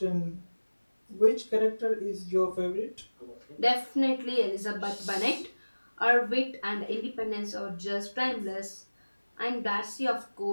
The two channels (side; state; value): both; inverted; correlation -1.00